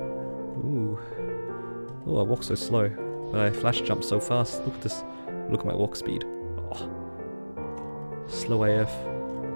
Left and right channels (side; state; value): both; inverted; correlation -1.00